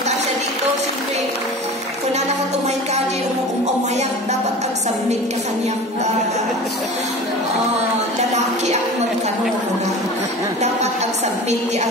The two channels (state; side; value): normal; both; correlation 0.36